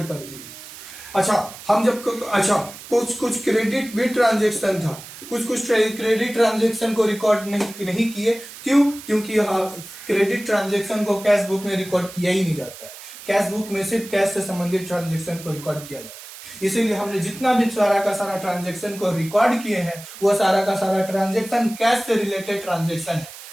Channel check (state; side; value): noise; right; hiss, 15 dB below the sound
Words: कर दिए। कुछ क्रेडिट भी ट्रांजेक्शन था। कुछ क्रेडिट ट्रांजेक्शन को रिकॉर्ड नहीं किए। क्यों? क्योंकि क्रेडिट ट्रांजेक्शन को कैश बुक में रिकॉर्ड किया ही नहीं जाता है। कैश बुक में सिर्फ कैश से संबंधित ट्रांजेक्शन को रिकॉर्ड किया जाता है। इसीलिए हमने जितना भी सारा का सारा ट्रांजेक्शन को रिकॉर्ड किए हैं, वह सारा का सारा ट्रांजेक्शन कैश से रिलेटेड ट्रांजेक्शन है।